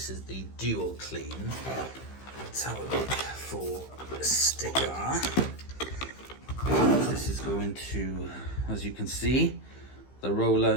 is the Duo Clean. Let's have a look for a sticker. This is going to, as you can see, the roller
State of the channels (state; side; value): late; right; 15 ms